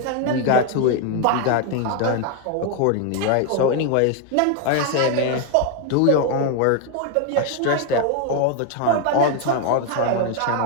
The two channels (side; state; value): both; different; correlation 0.01